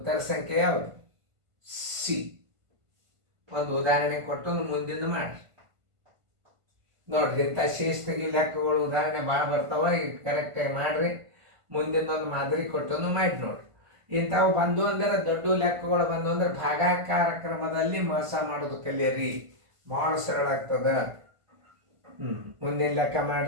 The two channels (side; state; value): left; late; 1.5 ms